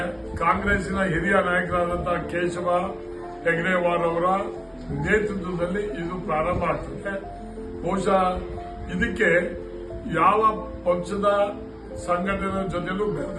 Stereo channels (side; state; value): both; identical; correlation 1.00